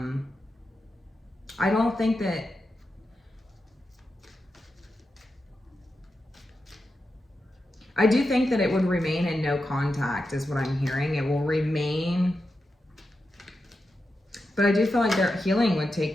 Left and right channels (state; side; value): normal; both; correlation 0.89